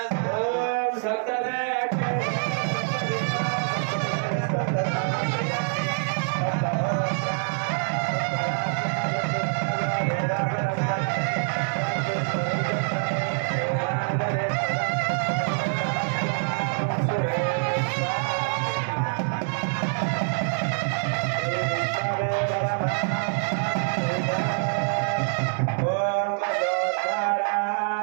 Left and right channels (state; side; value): silent; left; 61 dB below the other